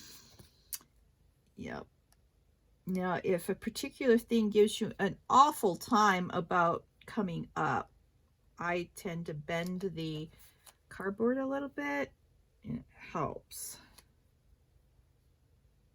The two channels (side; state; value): both; identical; correlation 1.00